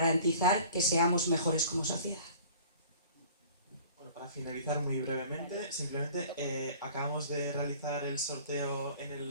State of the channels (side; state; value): both; inverted; correlation -0.48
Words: que seamos mejores como sociedad. Bueno, para finalizar muy brevemente, simplemente acabamos de realizar el sorteo en